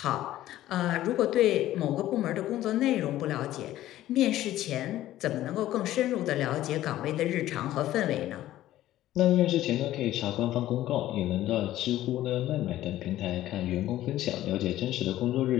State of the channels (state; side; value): quieter; right; 14.2 dB